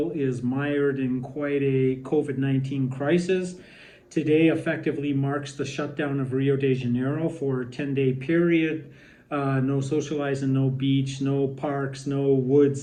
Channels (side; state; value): both; identical; correlation 1.00